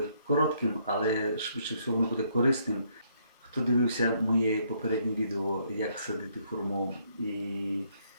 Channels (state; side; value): inverted; both; correlation -0.71